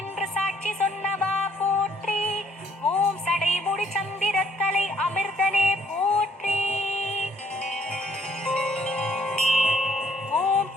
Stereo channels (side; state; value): both; normal; correlation 0.65